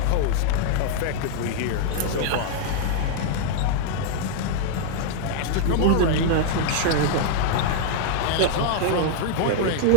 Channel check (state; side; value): different; both; correlation -0.01